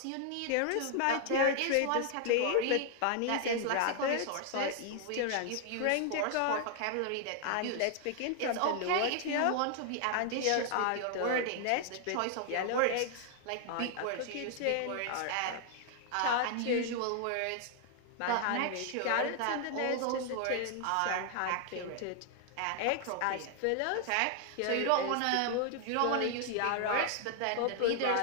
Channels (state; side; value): different; both; correlation 0.00